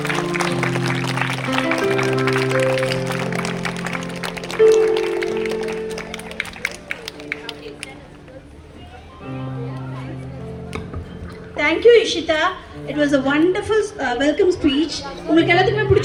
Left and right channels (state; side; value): identical; both; correlation 1.00